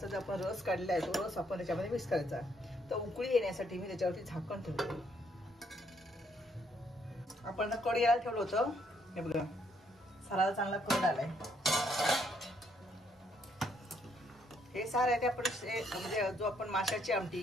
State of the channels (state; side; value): normal; both; correlation 0.70